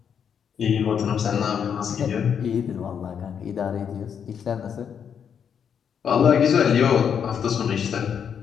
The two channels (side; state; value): right; quieter; 7.7 dB